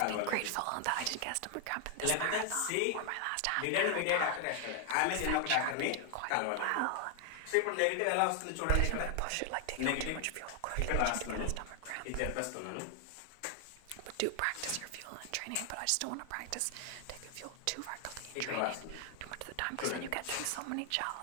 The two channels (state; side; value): different; both; correlation 0.00